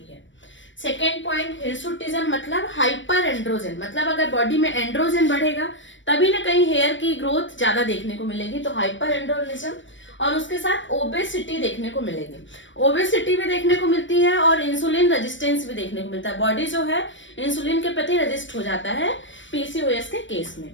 है। सेकेंड पॉइंट हिर्सुटिज्म मतलब हाइपर एंड्रोजन, मतलब अगर बॉडी में एंड्रोजन बढ़ेगा तभी ना कहीं हेयर की ग्रोथ ज्यादा देखने को मिलेगी, तो हाइपर एंड्रोजन। और उसके साथ ओबेसिटी देखने को मिलेगी। ओबेसिटी भी देखने को मिलती है और इंसुलिन रेजिस्टेंस भी देखने को मिलता है। बॉडी जो है इंसुलिन के प्रति रेजिस्ट हो जाता है पीसीओएस के केस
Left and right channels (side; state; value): right; late; 0.55 ms